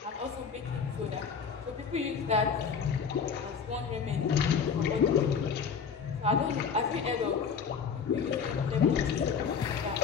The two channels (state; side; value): quieter; right; 6.3 dB